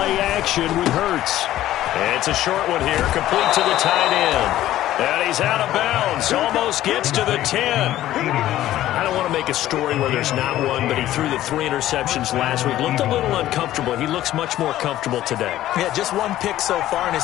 action with Hurts. It's a short one here, complete to the tight end. And he's out of bounds, almost gets to the 10. I don't want to make a story where there's not one, but he threw the 3 interceptions last week. Looked a little uncomfortable. He looks much more comfortable today. Yeah, just 1 pick so far and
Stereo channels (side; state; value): right; quieter; 13.8 dB